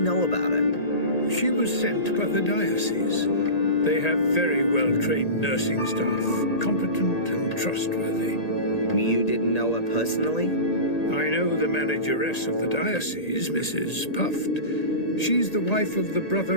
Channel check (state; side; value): late; right; 1.8 ms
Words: about her? She was sent by the diocese. They have very well-trained nursing staff, competent and trustworthy. You didn't know her personally? I know the manageress of the diocese, Mrs. Puft. She's the wife of the